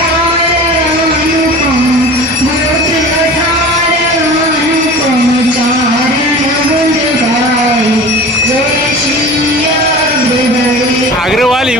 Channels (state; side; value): normal; both; correlation 0.37